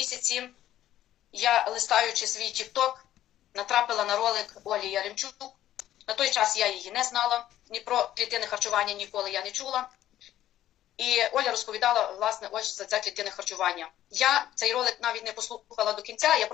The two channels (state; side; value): quieter; right; 12.7 dB